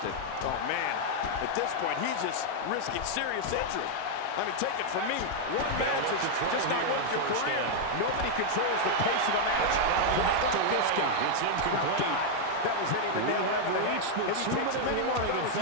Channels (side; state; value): both; different; correlation -0.01